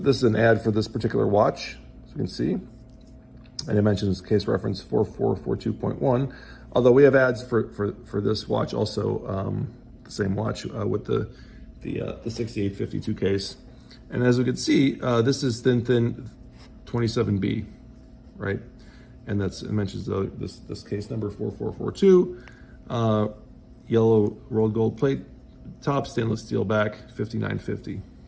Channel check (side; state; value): both; identical; correlation 1.00